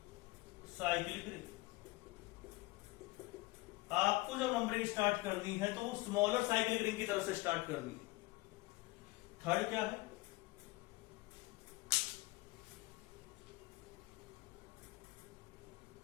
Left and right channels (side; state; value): right; quieter; 21.4 dB